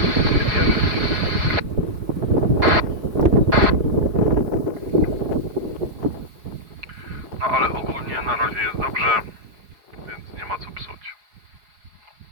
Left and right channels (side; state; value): left; late; 4.7 ms